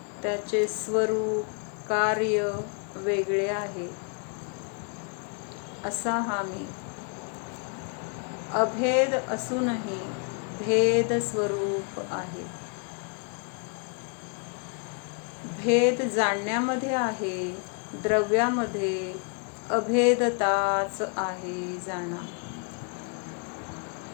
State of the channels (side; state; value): right; quieter; 38.8 dB